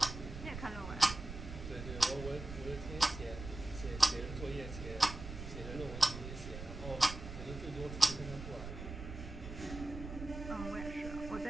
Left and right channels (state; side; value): noise; right; rumble, 9 dB below the sound